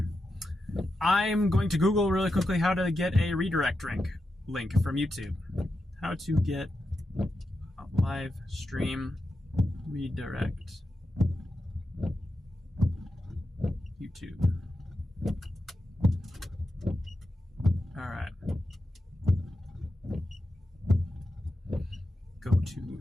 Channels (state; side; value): normal; both; correlation 0.88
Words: I'm going to Google really quickly how to get a redirect link from YouTube. How to get a live stream redirect. YouTube. All right. Go